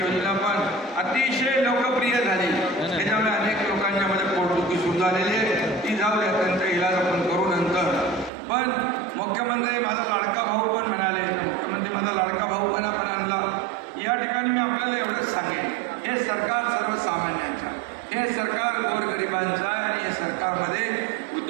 योजना पण अतिशय लोकप्रिय झाली, त्याच्यामुळे अनेक लोकांच्या मध्ये पोटदुखी सुरू झालेली आहे, ती जाऊ द्या, त्यांचा इलाज आपण करू नंतर। पण मुख्यमंत्री माझा लाडका भाऊ पण म्हणाले, मुख्यमंत्री माझा लाडका भाऊ पण आपण आणला। या ठिकाणी मी आपल्याला एवढंच सांगेन, हे सरकार सर्वसामान्यांचं, हे सरकार गोरगरिबांचं आहे आणि या सरकारमध्ये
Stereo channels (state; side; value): drops out; left; at 8.3 s